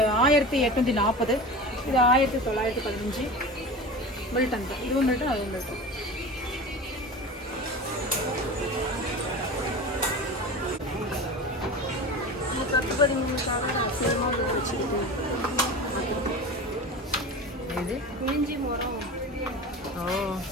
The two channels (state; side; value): normal; both; correlation 0.31